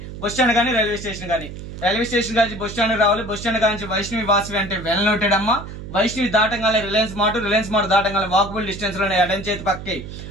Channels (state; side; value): noise; right; hum, 11 dB below the sound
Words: బస్ స్టాండ్ కానీ రైల్వే స్టేషన్ కానీ. రైల్వే స్టేషన్ కానీ బస్ స్టాండ్ రావాలి. బస్ స్టాండ్ కానీ వైష్ణవి వాసవి అంటే వెల్ నోటెడ్ అమ్మా. వైష్ణవి దాటంగానే రిలయన్స్ మార్ట్ దాటంగానే వాకబుల్ డిస్టెన్స్ లోనే ఎడం చేతి పక్కి